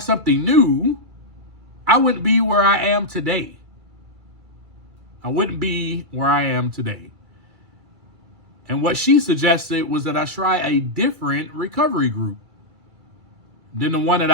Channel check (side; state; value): left; late; 2.3 ms